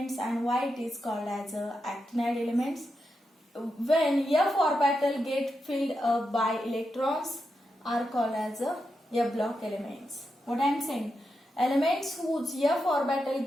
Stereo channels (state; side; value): normal; both; correlation 0.86